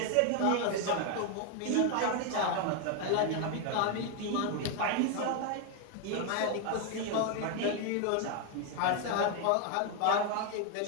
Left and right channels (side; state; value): both; different; correlation 0.01